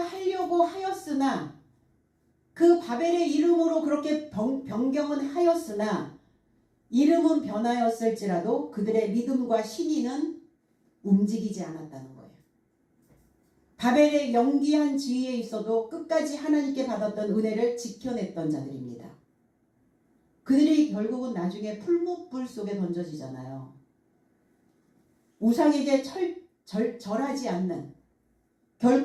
하였으나, 그 바벨의 이름으로 그렇게 변경은 하였으나 이름은 변하였을지라도 그들의 믿음과 신의는 움직이지 않았다는 거예요. 바벨의 영기한 지위에 있어도 끝까지 하나님께 받았던 은혜를 지켜냈던 자들입니다. 그들이 결국은 나중에 풀무불 속에 던져지잖아요. 우상에게 절하지 않는,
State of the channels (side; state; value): both; identical; correlation 1.00